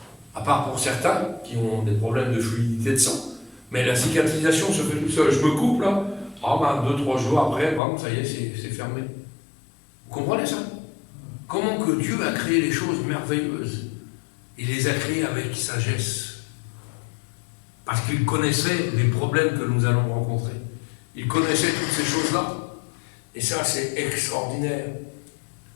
À part pour certains qui ont des problèmes de fluidité de sang. Mais la cicatrisation se fait tout seul. Je me coupe là, 2-3 jours après, ça y est, c'est fermé. Vous comprenez ça? Comment que Dieu a créé les choses merveilleuses? Il les a créées avec sagesse. Parce qu'il connaissait les problèmes que nous allons rencontrer. Il connaissait toutes ces choses-là. Et ça, c'est extraordinaire.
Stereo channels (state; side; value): drops out; right; at 7.8 s